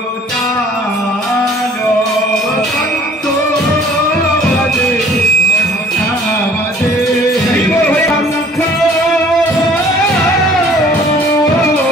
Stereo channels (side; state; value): both; normal; correlation 0.53